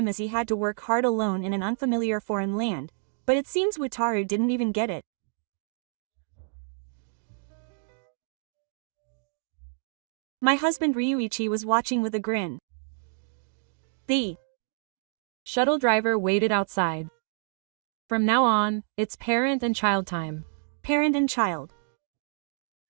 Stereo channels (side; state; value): left; silent; digital silence